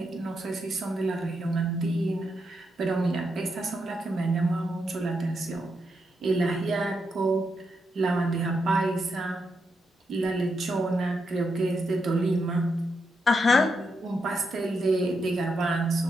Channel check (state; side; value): normal; both; correlation 0.83